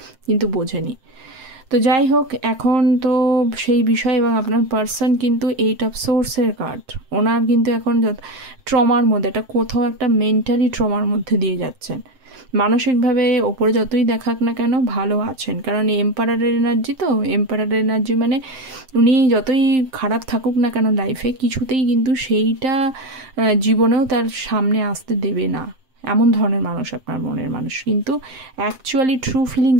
কিন্তু বোঝেনি। তো যাই হোক, এখন তো সেই বিষয়, এবং আপনার পার্সন কিন্তু 8 অফ সোর্সের কার্ড, ওনার কিন্তু এখন ট্রমার মধ্যে, এটা কোথাও একটা মেন্টালি ট্রমার মধ্যে দিয়ে যাচ্ছেন। মানসিকভাবে ওপরে যতই দেখাক না কেন ভালো আছেন, কারণ এম্পারারের এনার্জি, তো এম্পারারের এনার্জি মানে উনি যতই খারাপ থাকুক না কেন লাইফে, কিছুতেই কিন্তু সেইটা জীবনেও তার সামনে আসতে দেবে না, এমন ধরনের মানুষ আপনার মনের মানুষ। কিন্তু অ্যাকচুয়ালি ট্রু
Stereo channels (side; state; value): left; late; 7.7 ms